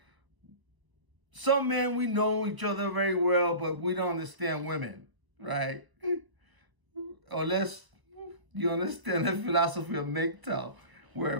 some men, we know each other very well, but we don't understand women, right? Unless you understand the philosophy of MGTOW,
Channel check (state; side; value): late; left; 1.2 ms